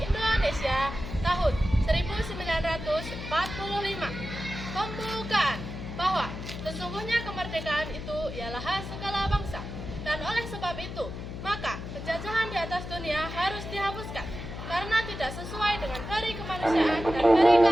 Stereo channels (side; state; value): left; noise; hum, 8 dB below the sound